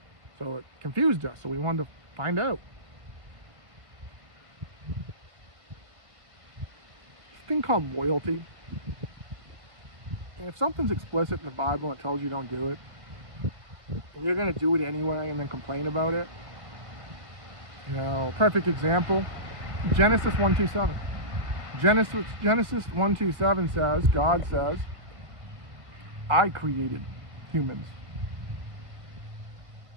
So it confused us, so we wanted to find out. This thing called loyalty. If something's explicit in the Bible and it tells you don't do it, and you're going to do it anyway and then complain about it, you know, perfect example, Genesis 1:27. Genesis 1:27 says, God says, I created humans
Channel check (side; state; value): left; late; 1.5 ms